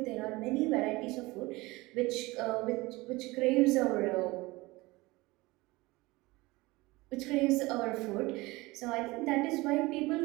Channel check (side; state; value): left; quieter; 21.6 dB